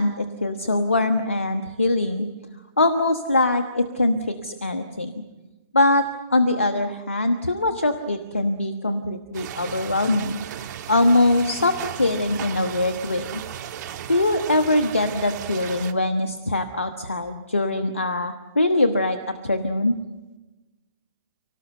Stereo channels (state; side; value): inverted; both; correlation -0.72